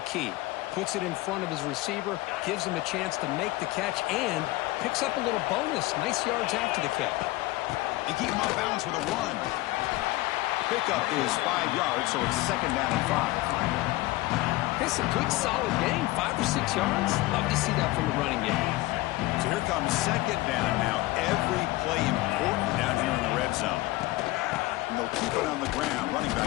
key. Puts it in front of his receiver, gives him a chance to make the catch, and picks up a little bonus. Nice yards after the catch. And keep him off balance with a run. Pickup is 5 yards, so it's second down and 5. It's a good, solid game, 5 or 6 yards. Love to see that from the running game. So here comes second down now. Every play important down here in the red zone. And they'll keep it on the ground. Running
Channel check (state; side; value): quieter; right; 19.3 dB